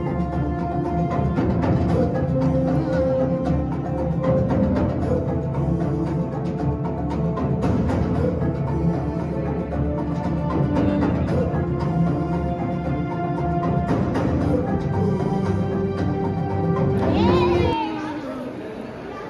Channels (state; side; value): identical; both; correlation 1.00